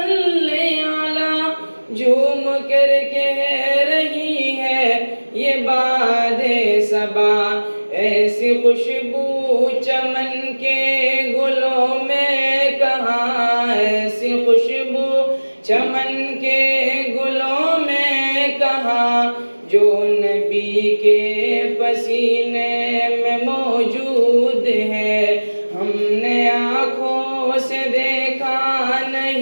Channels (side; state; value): both; inverted; correlation -1.00